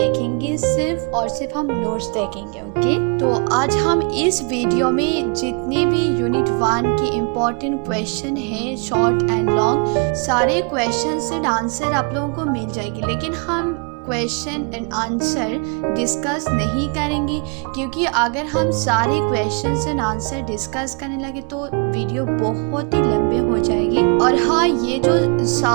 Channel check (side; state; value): left; quieter; 36.4 dB